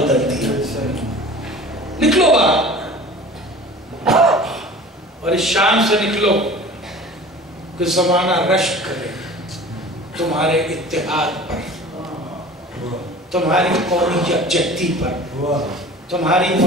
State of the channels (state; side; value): normal; both; correlation 0.41